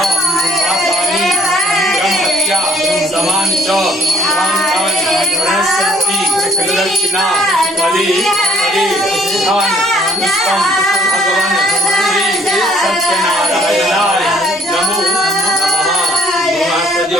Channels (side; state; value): both; normal; correlation 0.62